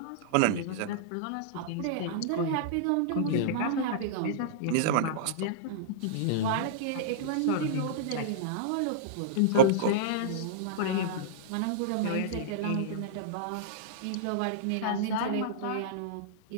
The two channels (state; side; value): different; both; correlation -0.03